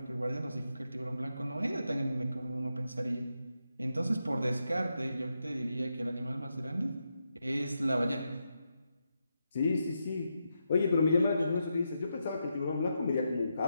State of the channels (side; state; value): both; inverted; correlation -0.85